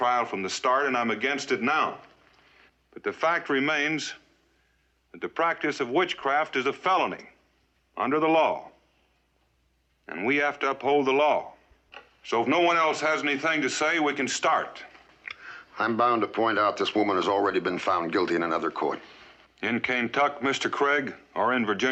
from the start, and I'm against it now. But the fact remains that the practice of witchcraft is a felony under the law. And we have to uphold the law. So if no one else has anything to say, we can start. I'm bound to point out this woman has already been found guilty in another court. In Kentucky, Mr. Craig, or in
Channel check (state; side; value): identical; both; correlation 1.00